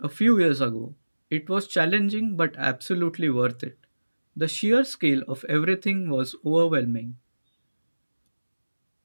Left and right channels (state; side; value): inverted; both; correlation -1.00